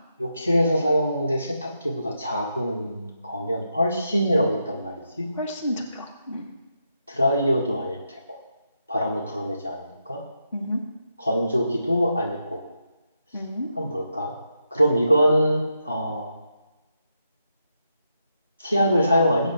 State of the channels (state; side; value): inverted; both; correlation -0.83